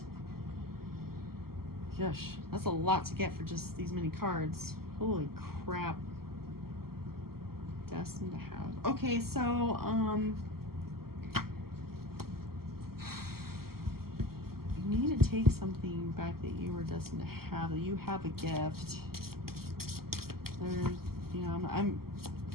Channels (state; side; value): late; left; 0.94 ms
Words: Gosh, that's a lot to get for just these many cards. Holy crap. Destined to have. Okay, so you need to take something back that you were destined to have. That you have a gift. There's, you know, I'm